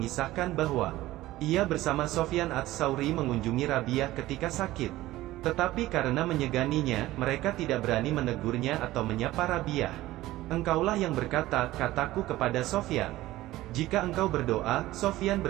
bahwa ia bersama Sofyan Ats-Tsauri mengunjungi Rabiah ketika sakit. Tetapi karena menyeganinya, mereka tidak berani menegurnya atau menyapa Rabiah. Engkaulah yang berkata, kataku kepada Sofyan. Jika engkau berdoa, Sofyan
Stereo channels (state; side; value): quieter; left; 16.6 dB